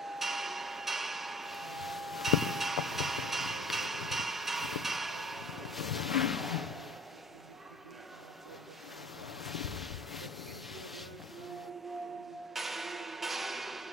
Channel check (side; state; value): both; normal; correlation 0.48